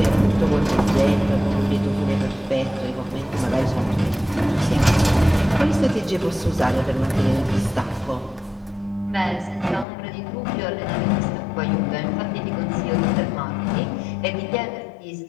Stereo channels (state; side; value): drops out; right; at 9.9 s